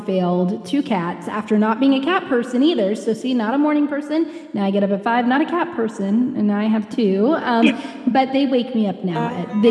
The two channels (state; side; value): identical; both; correlation 1.00